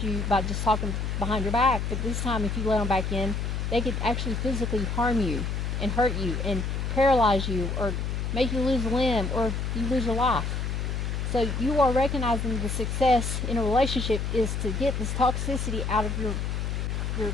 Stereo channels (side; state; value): left; noise; hum, 2 dB below the sound